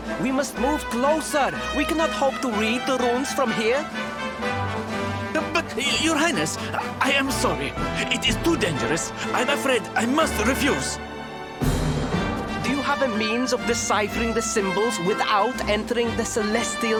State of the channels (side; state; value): both; identical; correlation 1.00